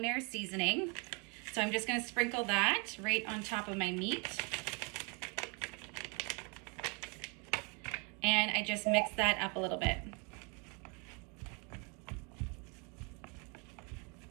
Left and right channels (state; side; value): quieter; left; 33.3 dB